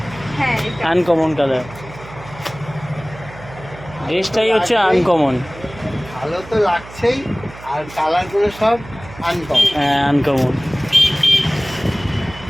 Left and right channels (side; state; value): right; noise; hum, 17 dB below the sound